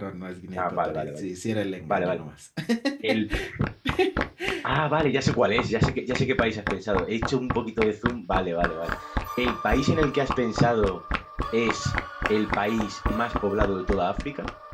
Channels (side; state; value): both; identical; correlation 1.00